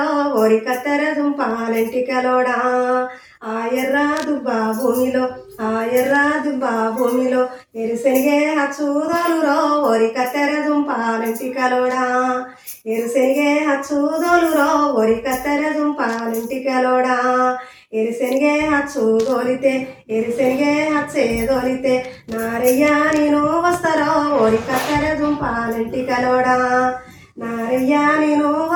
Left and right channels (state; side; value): identical; both; correlation 1.00